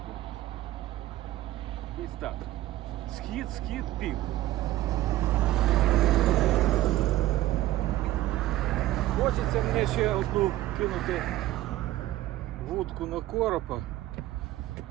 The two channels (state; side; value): quieter; left; 15.4 dB